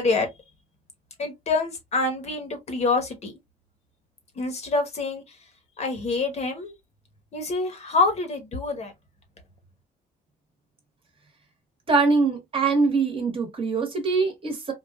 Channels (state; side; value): normal; both; correlation 0.37